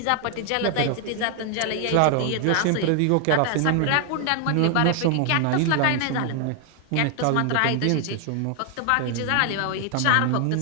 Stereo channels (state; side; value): different; both; correlation 0.00